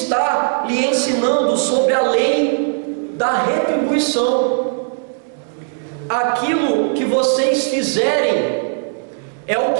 lhe ensinando sobre a lei da retribuição. Aquilo que vocês fizerem é o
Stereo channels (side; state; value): left; silent; 67 dB below the other